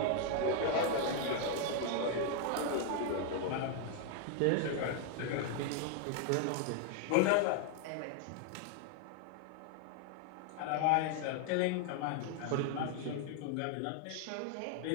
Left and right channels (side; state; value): both; different; correlation 0.00